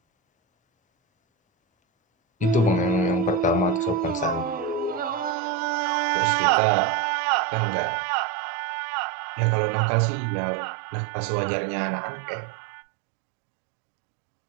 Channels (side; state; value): left; drops out; at 5.4 s